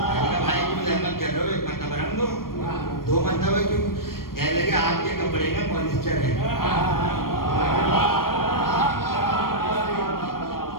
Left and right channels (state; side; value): late; right; 0.93 ms